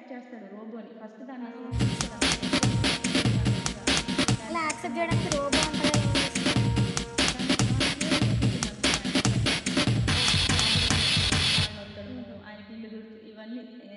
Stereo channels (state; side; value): identical; both; correlation 1.00